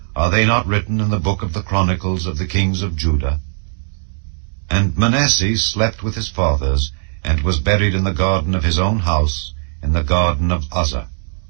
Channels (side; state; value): left; silent; digital silence